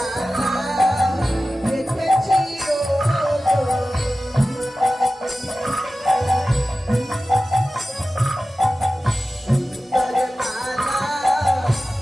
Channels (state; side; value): normal; both; correlation 0.95